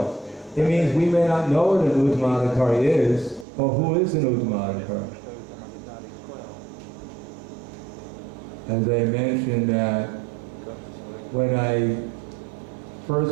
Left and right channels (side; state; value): left; drops out; at 3.5 s